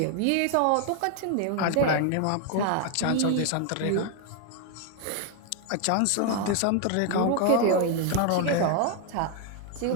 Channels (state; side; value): different; both; correlation 0.01